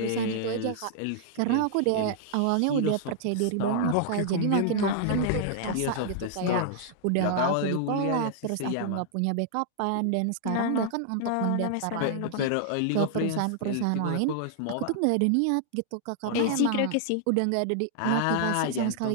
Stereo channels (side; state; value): both; different; correlation -0.01